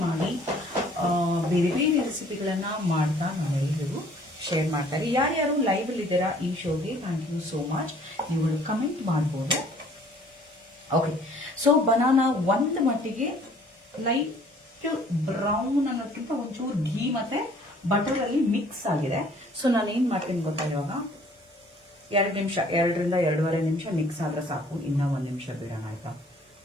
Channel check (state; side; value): normal; both; correlation 0.56